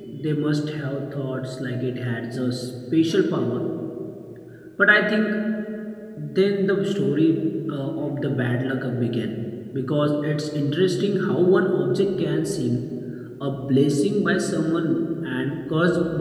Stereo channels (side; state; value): both; identical; correlation 1.00